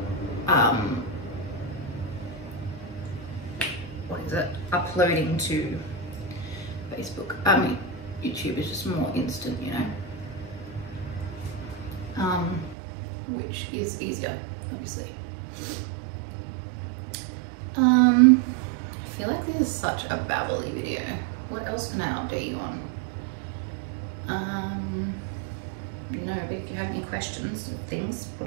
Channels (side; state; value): left; drops out; at 12.8 s